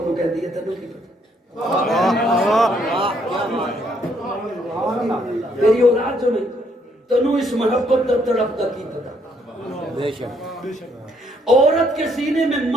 کہہ دیئے تنوں کی تیری اولاد جو نہیں، تنوں اس محبت در تڑپ تک کی پتا۔ بے شک، عورت کے سینے میں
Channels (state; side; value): normal; both; correlation 0.70